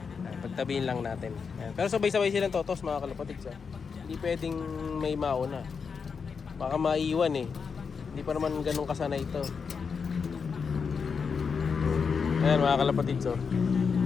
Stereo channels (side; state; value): right; quieter; 5.8 dB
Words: Ayan, pagtabihin lang natin. Ayan. Pero sabay-sabay silang totos mga kalapatids. Hindi pwedeng may mauna. Baka maiwan eh. Hindi pa naman ganun kasana ito. Ayan mga kalapatids.